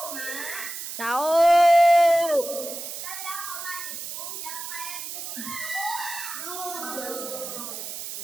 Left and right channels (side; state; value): right; noise; hiss, 8 dB below the sound